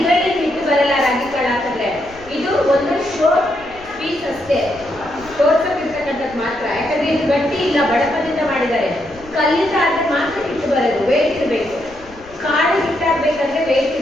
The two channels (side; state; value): left; noise; rumble, 22 dB below the sound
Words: ಹಿಟ್ಟು ಬರಲ್ಲ ರಾಗಿ ಕಾಳು ಹಾಕಿದ್ರೆ. ಇದು ಒಂದು ಶೋ ಪೀಸ್ ಅಷ್ಟೇ, ತೋರ್ಸಕ್ಕಿರ್ತಕ್ಕಂಥದ್ದು ಮಾತ್ರ. ಯಾಕಂದ್ರೆ ಇದು ಗಟ್ಟಿ ಇಲ್ಲ, ಬಡಪದಿಂದ ಮಾಡಿದ್ದಾರೆ. ಕಲ್ಲಿಂದ ಆದ್ರೆ ಮಾತ್ರ ಹಿಟ್ಟು ಬರೋದು, ವೇಟ್ ಇರಬೇಕು. ಕಾಳು ಹಿಟ್ಟಾಗಬೇಕಂದ್ರೆ ವೇಟ್